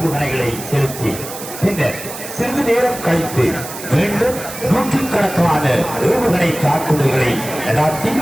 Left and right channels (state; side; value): noise; right; hiss, 11 dB below the sound